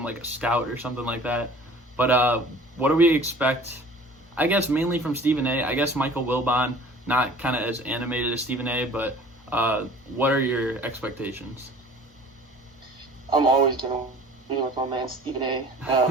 like a scout or something like that. But what do we expect? I guess mainly from Stephen A. I guess Michael Wilbon, not kind of as animated as Stephen A. But what are your expectations? I'm always gonna be with my man Stephen A.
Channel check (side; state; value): both; normal; correlation 0.47